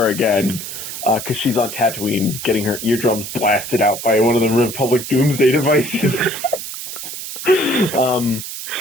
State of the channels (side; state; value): right; noise; hiss, 8 dB below the sound